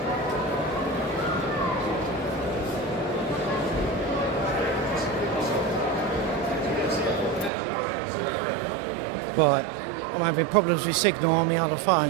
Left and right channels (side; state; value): left; drops out; at 7.5 s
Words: Right, I'm having problems with signal on my other